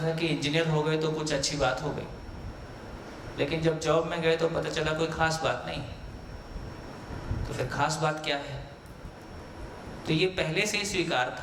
था कि इंजीनियर हो गए तो कुछ अच्छी बात हो गई, लेकिन जब जॉब में गए तो पता चला कोई खास बात नहीं। तो फिर खास बात क्या है? तो ये पहले से ही स्वीकार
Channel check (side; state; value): both; identical; correlation 1.00